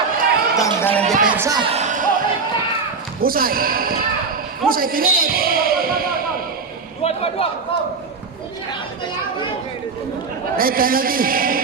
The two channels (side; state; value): left; quieter; 4.8 dB